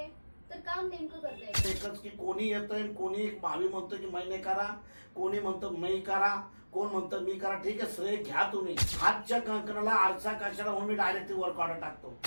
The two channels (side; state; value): both; inverted; correlation -1.00